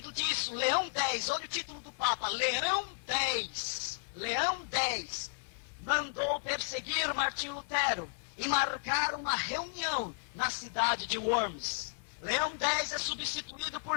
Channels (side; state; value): right; silent; 55 dB below the other